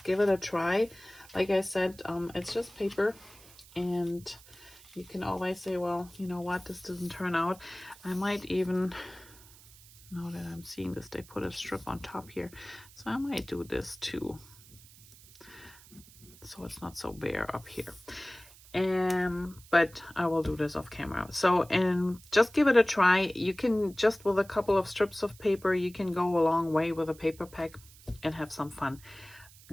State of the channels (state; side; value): noise; right; hiss, 22 dB below the sound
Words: give it a try. Like I said, it's just paper, and you can always say, well, you know what, this doesn't turn out. I might even, now that I'm seeing this, they put a strip on top here, so I might do this too, so it's not so bare up here. But I will do this off camera. So, and just give it a try. You can, just with a couple of strips of paper, you can go a long way with a paper pack and have some fun.